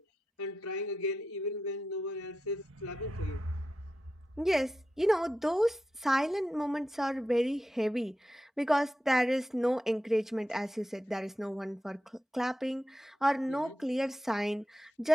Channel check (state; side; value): normal; both; correlation 0.89